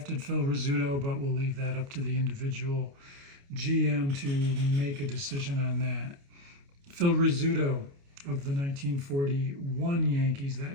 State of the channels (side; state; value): left; late; 29 ms